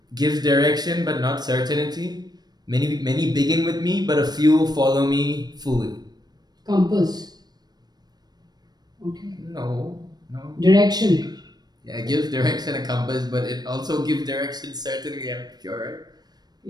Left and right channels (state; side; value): late; left; 0.19 ms